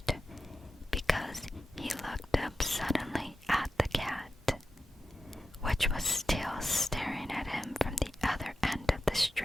because he looked up suddenly at the cat, which was still staring at him from the other end of the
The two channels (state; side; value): normal; both; correlation 0.92